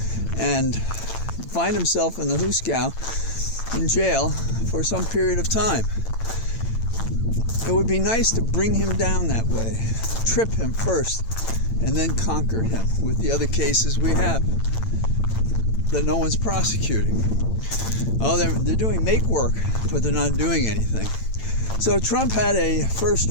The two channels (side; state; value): right; late; 8.9 ms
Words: and find himself in the Huskow in jail for some period of time. It would be nice to bring him down that way, trip him first, and then conquer him with the other cases we have that no one's prosecuting. They're doing make work, but they're not doing anything. So Trump had a